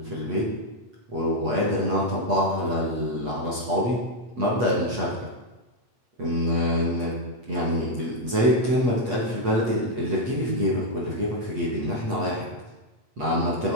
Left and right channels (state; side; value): late; left; 8.3 ms